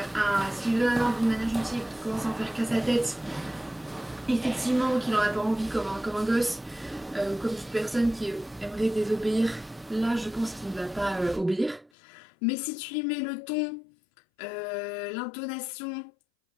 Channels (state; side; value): drops out; right; at 11.9 s